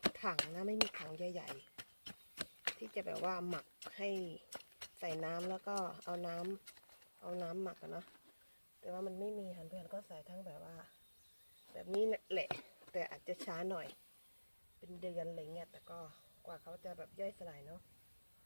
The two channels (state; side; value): inverted; both; correlation -1.00